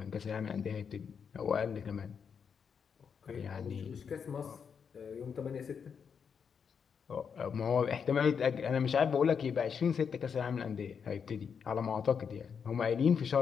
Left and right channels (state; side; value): quieter; right; 6.7 dB